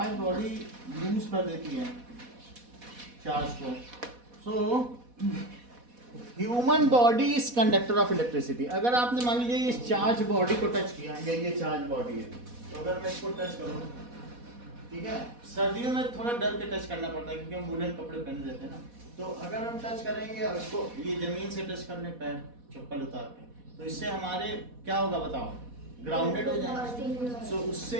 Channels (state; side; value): late; left; 4.1 ms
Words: बॉडी लूज कर देती है चार्ज को. So human body is conductor of electricity. अगर आपने मान लीजिए इस चार्ज बॉडी को टच किया, ये चार्ज बॉडी है, तो अगर मैं इसको टच करूँ, ठीक है, सर्दियों में थोड़ा डर के टच करना पड़ता है क्योंकि हम वुलन कपड़े पहन लेते हैं ना. तो अगर हम टच करेंगे और इसको ये जमीन से टच करने, पैर चप्पल उतार के, तो इससे हमारे क्या होगा बताओ, ग्राउंडेड हो जाएगा. सो